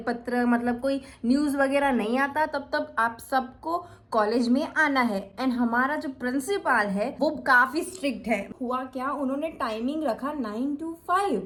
मतलब कोई न्यूज़ वगैरह नहीं आता, तब तक आप सबको कॉलेज में आना है। एंड हमारा जो प्रिंसिपल है वो काफी स्ट्रिक्ट है। हुआ क्या, उन्होंने टाइमिंग रखा 9 to 5।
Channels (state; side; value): identical; both; correlation 1.00